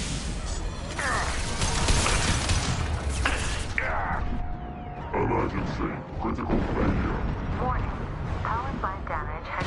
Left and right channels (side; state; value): both; identical; correlation 1.00